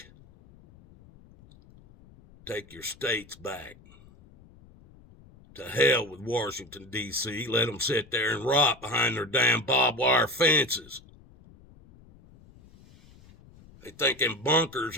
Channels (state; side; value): noise; left; rumble, 25 dB below the sound